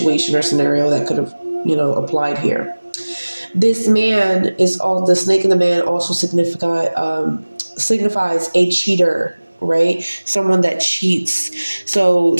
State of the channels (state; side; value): inverted; both; correlation -1.00